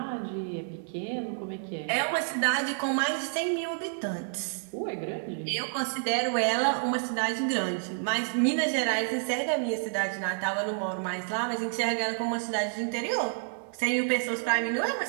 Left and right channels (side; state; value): left; silent; digital silence